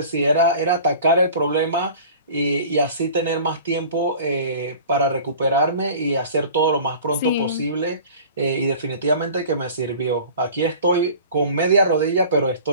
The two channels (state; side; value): inverted; both; correlation -0.43